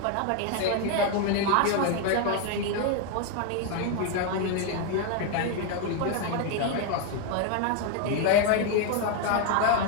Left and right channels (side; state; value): both; different; correlation 0.01